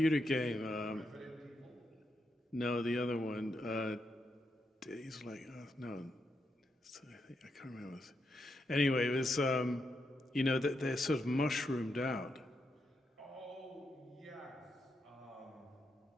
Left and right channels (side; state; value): both; normal; correlation 0.82